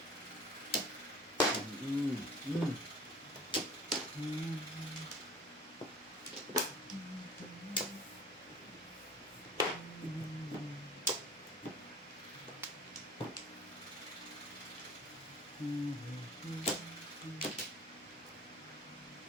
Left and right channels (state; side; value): normal; both; correlation 0.44